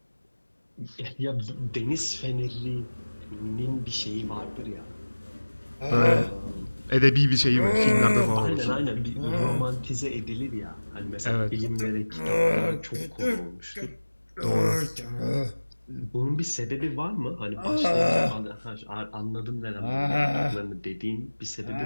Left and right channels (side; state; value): both; inverted; correlation -1.00